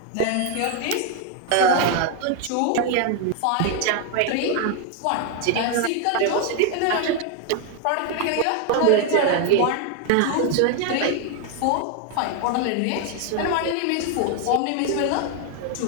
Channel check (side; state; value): both; different; correlation 0.01